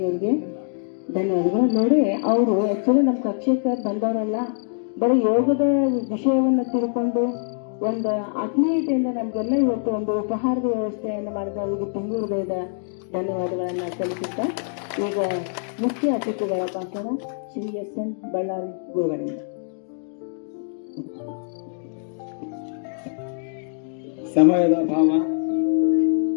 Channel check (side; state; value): right; silent; digital silence